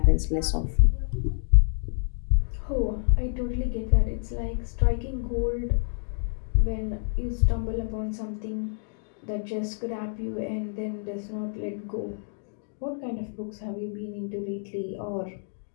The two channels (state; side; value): silent; right; digital silence